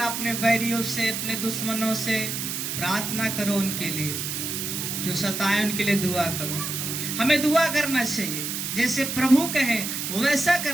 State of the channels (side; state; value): right; noise; hiss, 3 dB below the sound